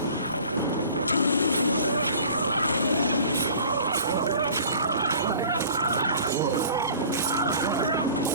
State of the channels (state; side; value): inverted; both; correlation -0.46